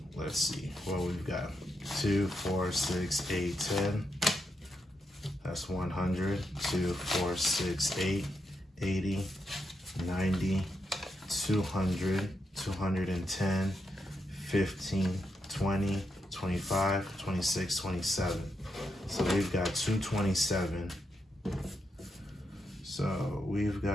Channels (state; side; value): normal; both; correlation 0.83